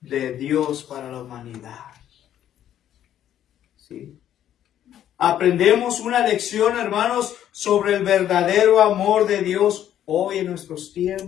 de Dios para la humanidad. ¿Sí? Aprendemos una lección, hermanos, sobre el verdadero amor de Dios hoy en nuestros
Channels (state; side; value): quieter; right; 11.0 dB